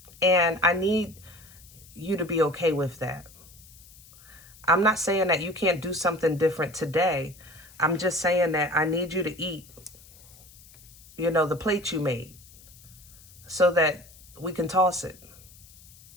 And I need you to be okay with that. I'm not saying that you can't do something different today. I'm just saying that I need you to eat, you know, the plate you made, so that we can toss it.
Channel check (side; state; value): left; noise; hiss, 23 dB below the sound